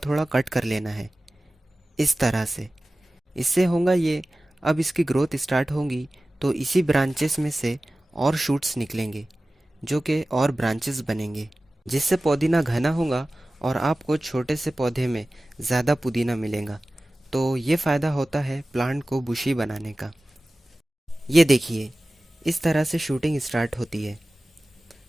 कट कर लेना है, इस तरह से। इससे होगा ये, अब इसकी ग्रोथ स्टार्ट होगी तो इसी ब्रांचेस में से और शूट्स निकलेंगे जो कि और ब्रांचेस बनेंगे, जिससे पुदीना घना होगा और आपको छोटे से पौधे में ज़्यादा पुदीना मिलेगा। तो ये फ़ायदा होता है प्लांट को बुशी बनाने का। ये देखिए, इस तरह से शूटिंग स्टार्ट होती है।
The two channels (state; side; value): normal; both; correlation 0.97